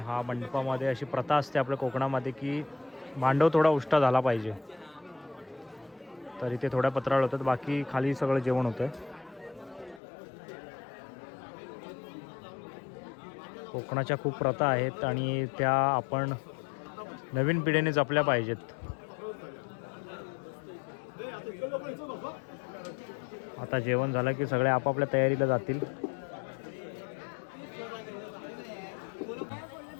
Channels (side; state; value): right; drops out; at 10.0 s